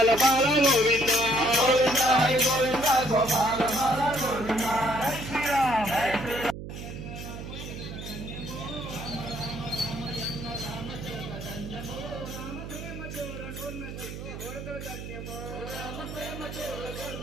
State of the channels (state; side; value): noise; right; hum, 9 dB below the sound